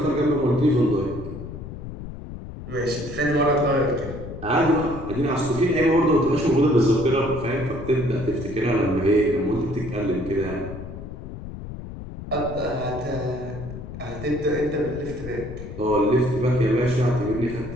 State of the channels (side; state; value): left; noise; rumble, 11 dB below the sound